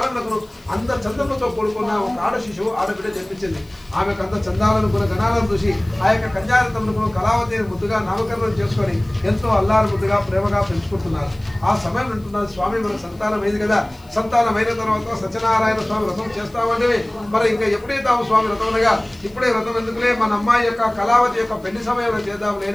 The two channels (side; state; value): left; noise; hiss, 29 dB below the sound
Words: అంత చందములతో కూడుకున్న ఒక ఆడ శిశువు ఆడబిడ్డ జన్మించింది. ఆమెకు అంత చందాలను గణాలను చూసి ఆ యొక్క కన్యారతములకు కళావతి ముద్దుగా నామకరణం చేసుకొని ఎంతో అల్లారు ముద్దుగా ప్రేమగా పెంచుకుంటున్నారు. ఆ సమయం అంటున్నారు, స్వామి మన సంతానం అయింది కదా, సంతానమైన తర్వాత సత్యనారాయణ స్వామి వ్రతం చేస్తామంటే మరి ఇంకా ఎప్పుడే తాము స్వామి వ్రతం అనగా ఇప్పుడే వ్రతం ఎందుకులే, మన అమ్మాయి యొక్క కళావతి యొక్క పెళ్లి సమయంలో చేద్దాం